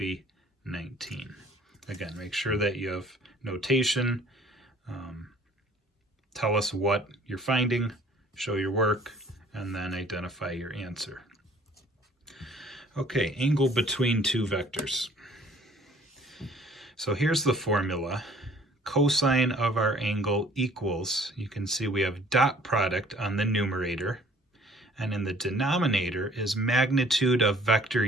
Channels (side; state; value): both; normal; correlation 0.55